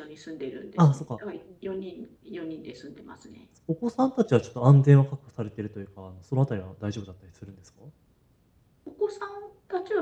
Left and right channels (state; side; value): identical; both; correlation 1.00